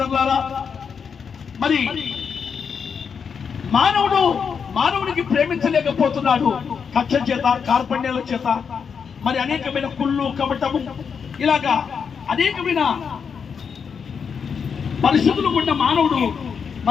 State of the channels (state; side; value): quieter; right; 6.4 dB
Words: మరి మానవుడికి ప్రేమించలేకపోతున్నాడు. కక్ష చేత, కార్పణ్యాల చేత, మరి అనేకమైన కుళ్ళు, కపటము, ఇలాగా అనేకమైన పరిస్థితులు ఉన్న మానవుడు